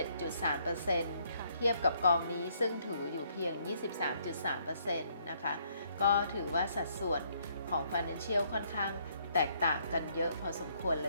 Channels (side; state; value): both; inverted; correlation -0.69